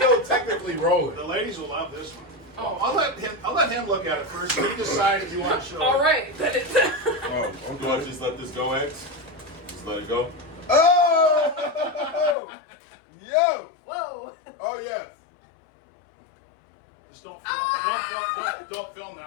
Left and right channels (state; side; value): drops out; right; at 12.4 s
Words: technically rolling. the ladies will love this one. Oh. I'll let him look at it first. You decide if you want to show All it. right, then it's. Oh, Do I just let this go, X? Just let it go? Oh! Yo! Whoa. Oh, yes. Just don't film